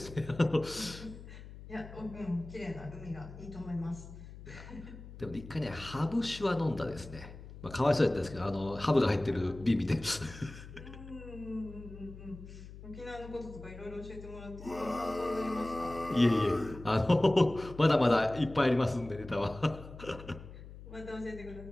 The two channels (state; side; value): noise; left; hum, 15 dB below the sound